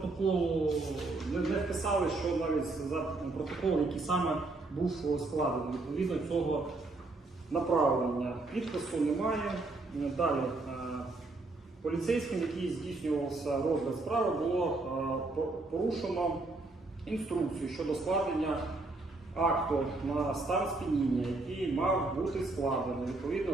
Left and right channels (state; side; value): quieter; left; 3.2 dB